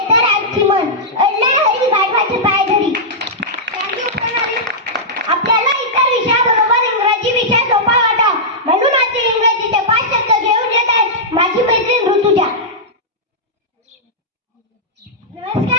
तर आजची मन. अडला हरी गाढवाचे पाय धरी. थँक्यू प्रणाली. आपल्याला इतर विषयाबरोबर इंग्रजी विषय सोपा वाटावा म्हणून आज इंग्रजीचे 5 शब्द घेऊन येत आहे माझी मैत्रीण ऋतुजा.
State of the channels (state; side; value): normal; both; correlation -0.11